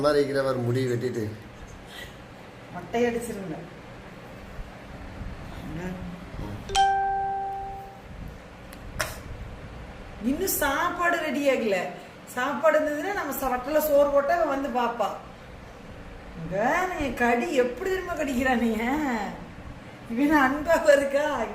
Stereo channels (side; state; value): both; identical; correlation 1.00